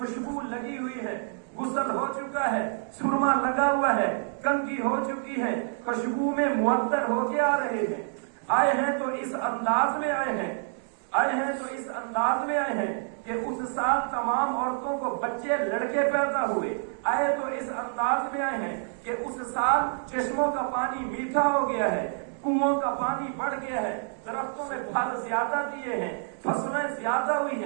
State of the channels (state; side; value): silent; left; digital silence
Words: لگی ہوئی ہے، غسل ہو چکا ہے، سرما لگا ہوا ہے، کنگھی ہو چکی ہے، خوشبو میں معطر ہو کے آ رہے ہیں. آئے ہیں تو اس انداز میں آئے ہیں، آئے ہیں تو اس انداز میں آئے ہیں کہ اس سال تمام عورتوں کو بچے لڑکے پیدا ہوئے. آئے تو اس انداز میں آئے ہیں کہ اس سال چشموں کا پانی میٹھا ہو گیا ہے، کنووں کا پانی بڑھ گیا ہے، درختوں میں پھل زیادہ دیے ہیں، فصلیں زیادہ ہوئی